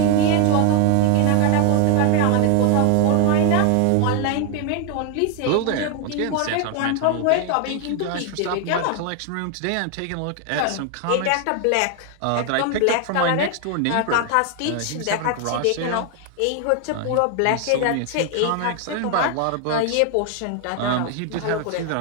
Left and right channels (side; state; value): both; different; correlation 0.00